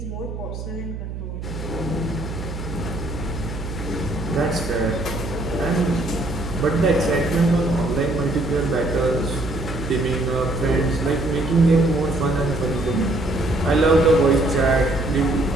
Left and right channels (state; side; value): noise; right; hum, 8 dB below the sound